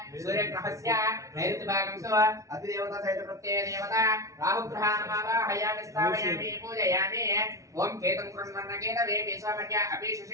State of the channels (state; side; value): late; left; 0.15 ms